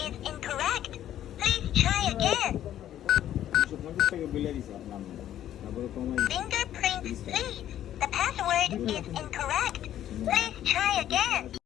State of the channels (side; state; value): right; quieter; 11.6 dB